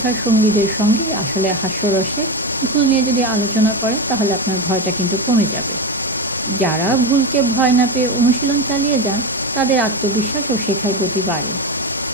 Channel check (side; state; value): both; normal; correlation 0.17